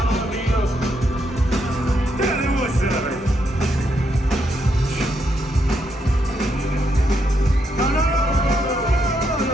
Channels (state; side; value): normal; both; correlation 0.78